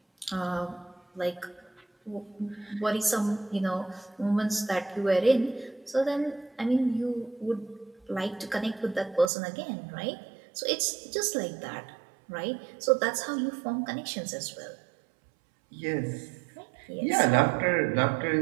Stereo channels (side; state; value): left; drops out; at 9.3 s